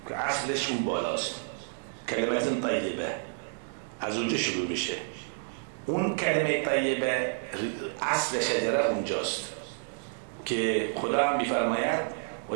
که اصلش اون بالاست. کلمت طیبه از اونجا شروع میشه. اون کلمه طیبه اصل شجره اونجاست که خدا هم میفرماید و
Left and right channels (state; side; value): silent; left; digital silence